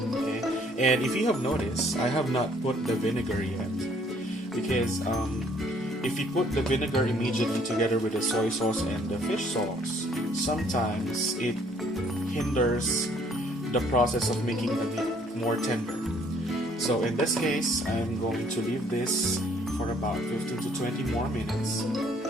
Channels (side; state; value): both; normal; correlation 0.63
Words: Okay, and if you have noticed, I have not put the vinegar yet, because if you put the vinegar immediately together with the soy sauce and the fish sauce, sometimes it hinders the process of making the meat more tender. So in this case, I'm going to leave this for about 15 to 20 more minutes